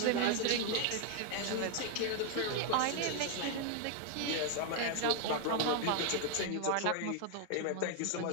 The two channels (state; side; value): different; both; correlation 0.00